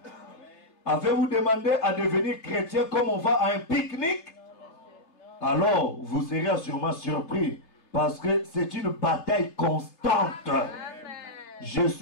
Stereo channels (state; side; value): late; right; 3.3 ms